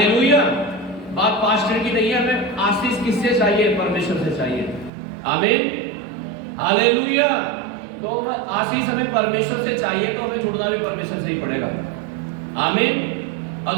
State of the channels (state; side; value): drops out; left; at 4.9 s